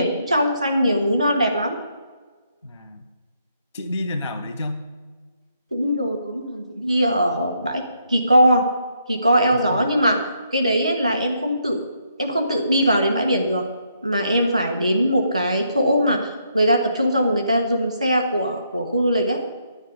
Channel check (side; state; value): both; inverted; correlation -0.75